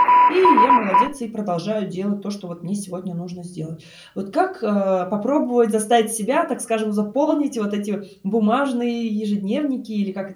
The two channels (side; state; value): both; identical; correlation 1.00